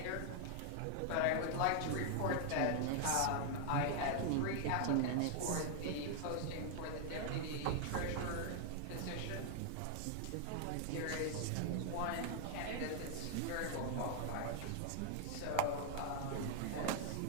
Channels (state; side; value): different; both; correlation 0.00